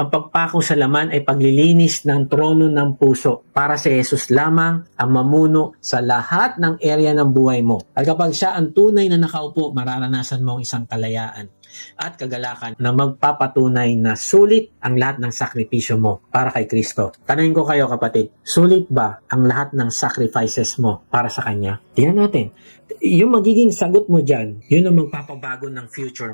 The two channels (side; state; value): both; inverted; correlation -1.00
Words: pagpako sa laman ay paglilinis ng trono ng puso para si Jesus lamang ang mamuno sa lahat ng area ng buhay mo. At kapag siya ang tunay na nakaupo, mararanasan mo ang isang kalayaan at kagalakan na magpapatunay na sulit ang lahat ng sakripisyo mo para kay Kristo. Tanungin ko kayo kapatid, sulit ba ang lahat ng sacrifices mo para sa Kanya? Tingnan natin. Yung magiging sagot mo dyan, yun ang magpapabago ng future